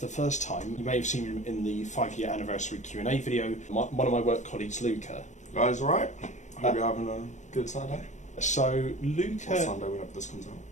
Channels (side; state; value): right; late; 0.35 ms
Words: the first time, you may have seen in the 5-year anniversary Q&A video, one of my work colleagues, Luka. Guys, alright? Hope you're having a good Saturday. So, Luka... Or Sunday, whenever this comes out.